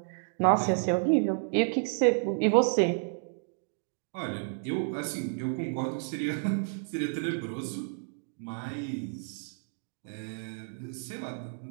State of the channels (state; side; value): silent; left; digital silence